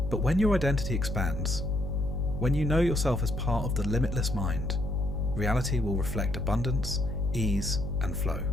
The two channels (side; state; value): left; noise; hum, 3 dB below the sound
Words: But when your identity expands, when you know yourself as part of the limitless mind, reality will reflect abundance, ease, and flow.